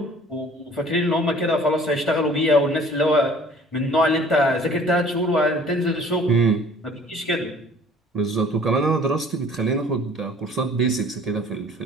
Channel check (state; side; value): normal; both; correlation 0.51